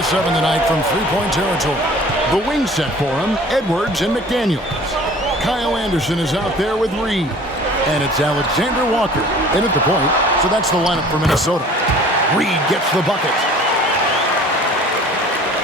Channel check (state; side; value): normal; both; correlation 0.48